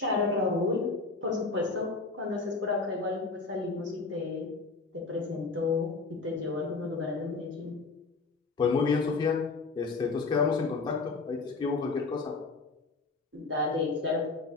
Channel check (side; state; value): right; quieter; 4.0 dB